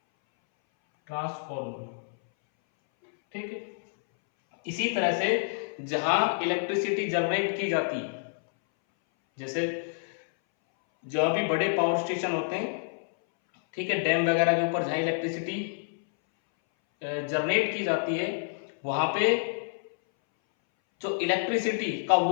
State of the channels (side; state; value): right; silent; 59 dB below the other